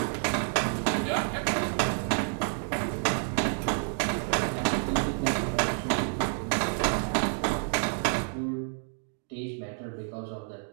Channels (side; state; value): left; silent; 58 dB below the other